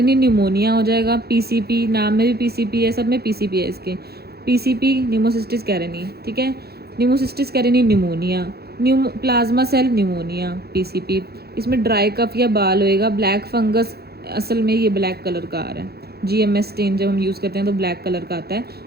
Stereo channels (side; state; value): left; late; 0.46 ms